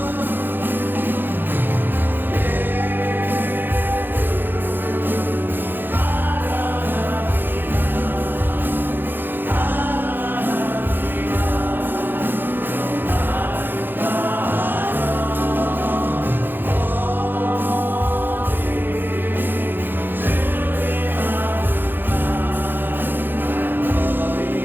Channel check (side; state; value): left; late; 0.095 ms